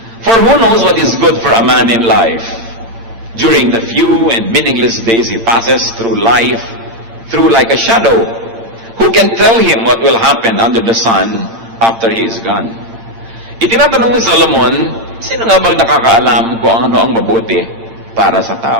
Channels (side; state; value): left; late; 8.8 ms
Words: For who knows what is good for a man in life? During the few and meaningless days he passes through life, through like a shadow. Who can tell him what will happen under the sun after he is gone? Itinatanong ni Solomon, sino nga bang nakakaalam kung ano ang mabuti para sa